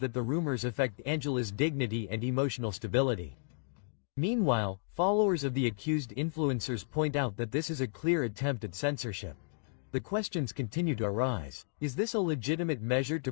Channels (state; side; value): silent; right; digital silence